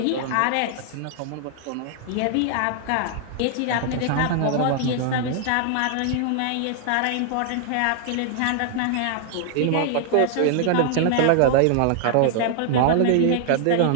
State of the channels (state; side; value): different; both; correlation -0.01